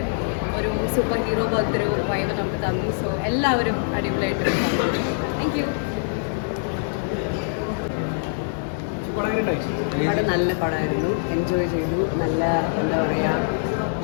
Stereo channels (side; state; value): right; silent; digital silence